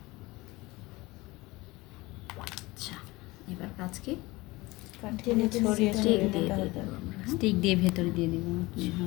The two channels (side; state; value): right; quieter; 21.4 dB